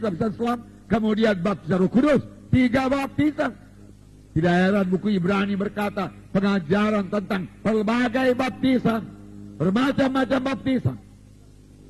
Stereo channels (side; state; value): both; identical; correlation 1.00